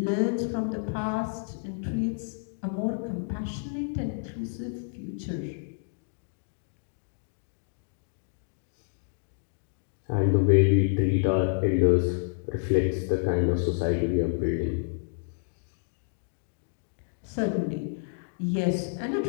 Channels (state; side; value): silent; right; digital silence